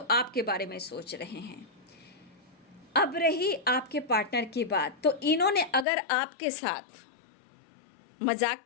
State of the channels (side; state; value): right; drops out; at 5.9 s